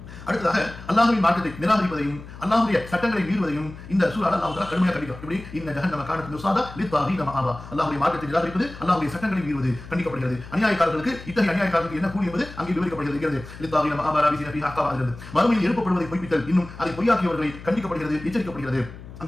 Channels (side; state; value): left; noise; hum, 15 dB below the sound